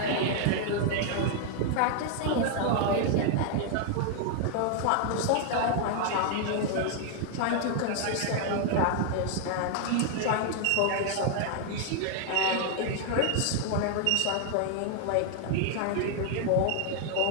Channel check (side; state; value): both; different; correlation 0.00